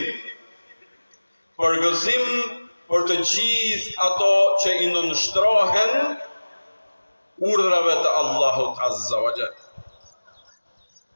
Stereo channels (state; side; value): inverted; both; correlation -1.00